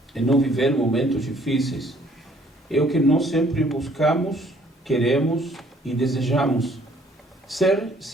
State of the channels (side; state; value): both; normal; correlation 0.61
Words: em não viver momentos difíceis, é o que nós sempre buscamos, queremos e desejamos. Ser